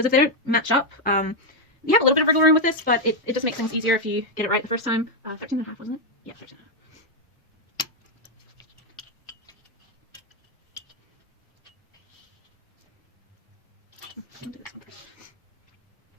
if they don't match up, you have a little bit of wiggle room with this, but it just makes things easier if you get it right the first time. 13.5, wasn't it? Yeah, 13.5. I'll do this one first.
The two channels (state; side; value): normal; both; correlation 0.01